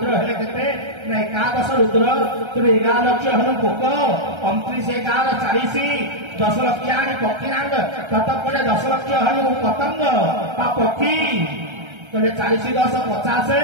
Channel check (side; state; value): left; late; 1.3 ms